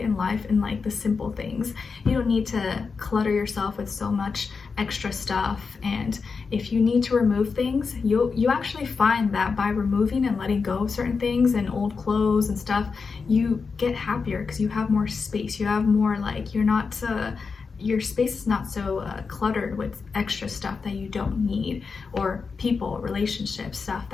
life in like the simple things. You don't need to clutter yourself with so much extra stuff. And if you need to remove things, you actually find that by removing and letting go of certain things and old clothes and stuff, you get happier because you have more space. You have more, like, you're not your space is not so cluttered with extra stuff that you don't need, or people, relationships, stuff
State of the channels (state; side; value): quieter; right; 5.0 dB